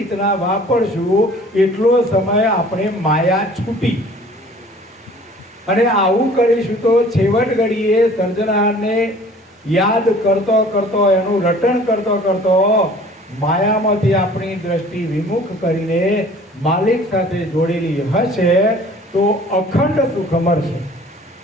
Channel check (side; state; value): both; normal; correlation 0.50